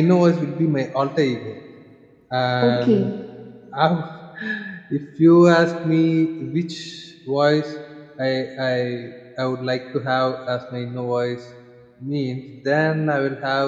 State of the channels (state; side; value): identical; both; correlation 1.00